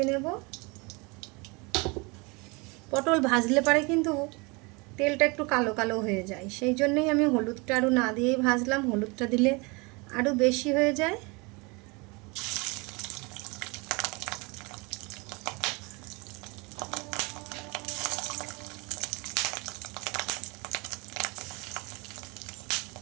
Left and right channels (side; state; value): left; quieter; 28.0 dB